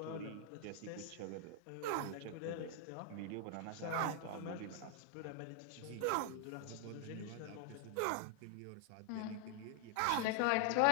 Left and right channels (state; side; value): different; both; correlation 0.00